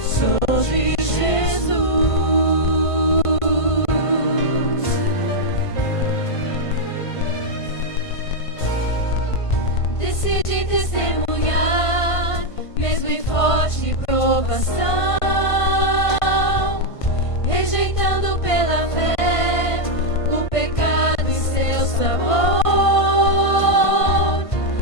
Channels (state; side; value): late; right; 1.5 ms